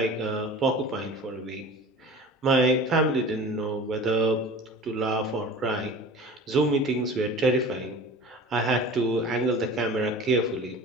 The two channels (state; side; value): normal; both; correlation 0.39